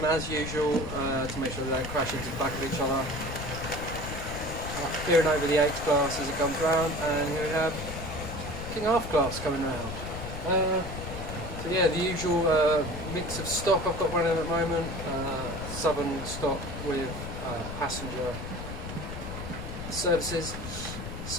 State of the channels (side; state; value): left; noise; rumble, 8 dB below the sound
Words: as usual to make sure they don't crash into the back of each other. Peering over the H class as it comes round, and here we have King half class coming round. So yeah, the usual mix of stock I've got running at the moment, southern stock with passenger services.